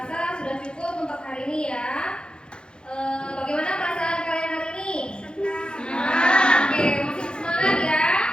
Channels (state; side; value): late; right; 0.050 ms